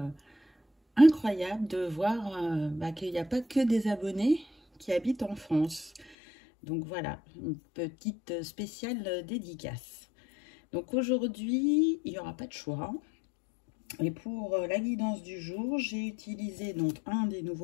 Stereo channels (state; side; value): drops out; right; at 6.2 s